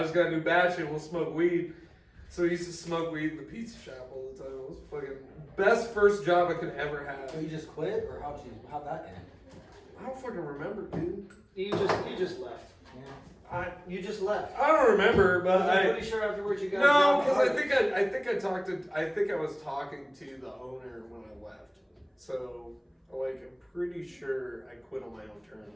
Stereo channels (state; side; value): identical; both; correlation 1.00